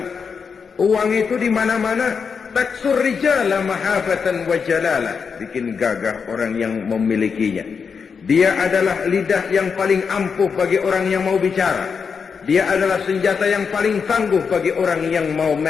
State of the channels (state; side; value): quieter; right; 5.9 dB